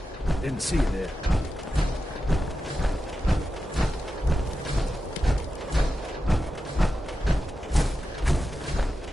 Didn't see you there.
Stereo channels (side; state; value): both; normal; correlation 0.90